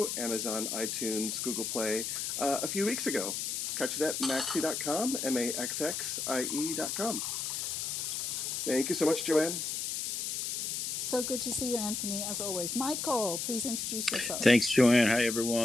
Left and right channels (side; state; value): left; noise; hiss, 2 dB below the sound